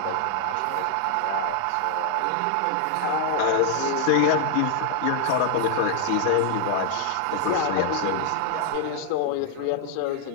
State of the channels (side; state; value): both; different; correlation 0.00